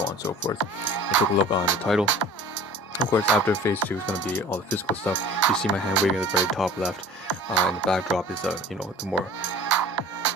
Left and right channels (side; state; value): both; normal; correlation 0.44